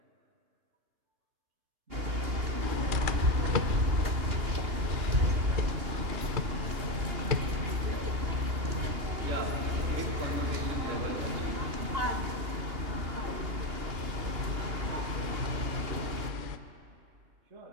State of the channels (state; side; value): late; left; 2.8 ms